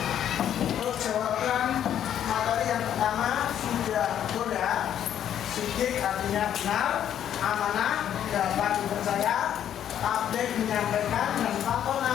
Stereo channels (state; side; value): quieter; right; 10.1 dB